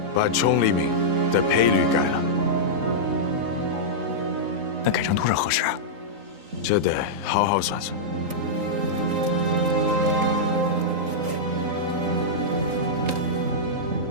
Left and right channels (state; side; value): late; left; 3.8 ms